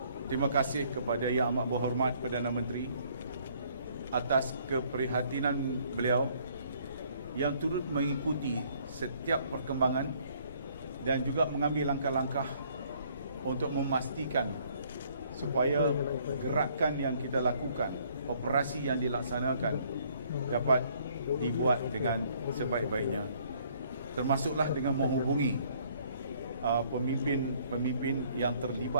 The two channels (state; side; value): inverted; both; correlation -0.63